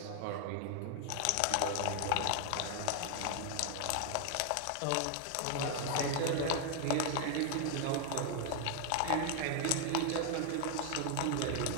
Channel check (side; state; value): both; different; correlation 0.00